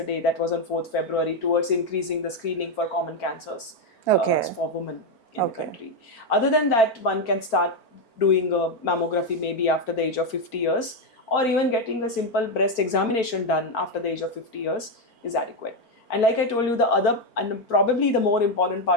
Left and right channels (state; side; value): late; right; 4.5 ms